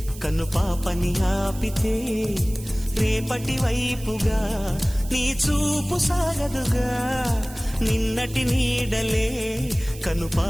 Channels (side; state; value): right; noise; hiss, 17 dB below the sound